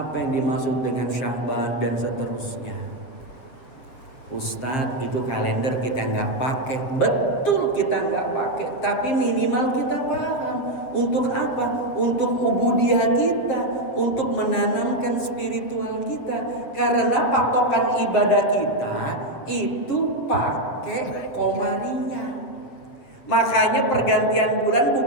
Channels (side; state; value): right; late; 7.7 ms